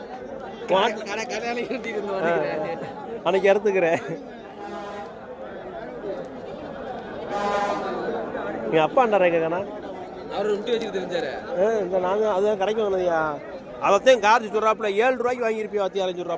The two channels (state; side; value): identical; both; correlation 1.00